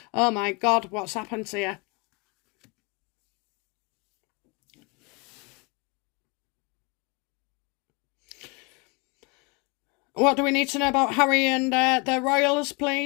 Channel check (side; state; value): right; quieter; 29.0 dB